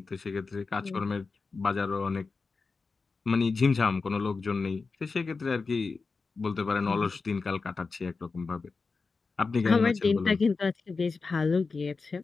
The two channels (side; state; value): right; quieter; 4.4 dB